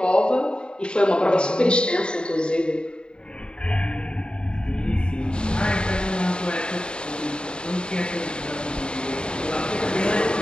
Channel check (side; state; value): right; late; 0.051 ms